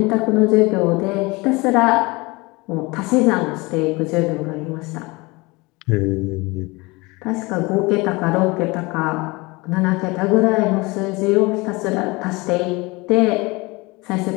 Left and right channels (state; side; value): quieter; right; 24.4 dB